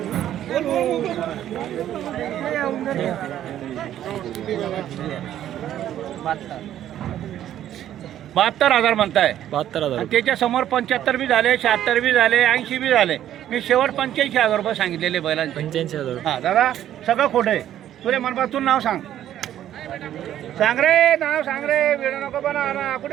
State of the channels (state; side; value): quieter; left; 11.5 dB